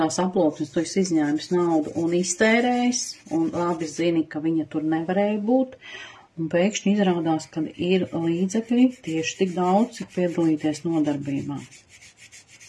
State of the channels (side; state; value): both; identical; correlation 1.00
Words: aploksnes tu esi izņēmis naudu un iztērējis, un labi zini, ka viņa tur nevarēja būt, un pēkšņi izrādās, ka ir līdzekļi tieši tik daudz, cik piedalīties nodarbībā.